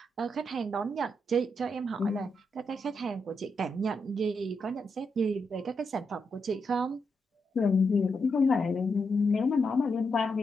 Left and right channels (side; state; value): both; normal; correlation 0.83